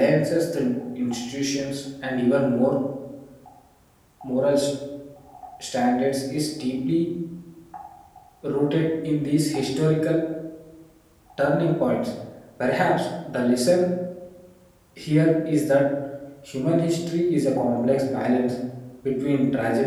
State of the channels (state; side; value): identical; both; correlation 1.00